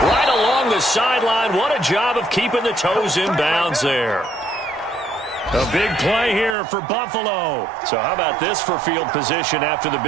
right along the sideline. What a job of keeping the toes in bounds there. A big play here for Buffalo. So how about this for field position after the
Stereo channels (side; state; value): left; drops out; at 6.6 s